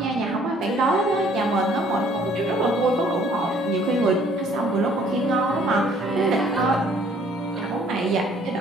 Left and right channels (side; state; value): both; normal; correlation 0.59